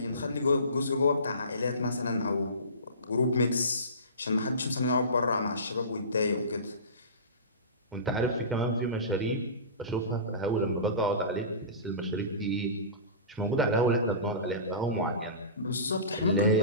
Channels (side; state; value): both; inverted; correlation -0.32